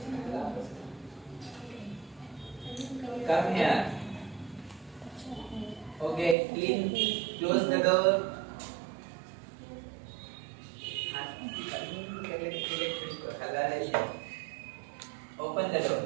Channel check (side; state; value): left; drops out; at 6.4 s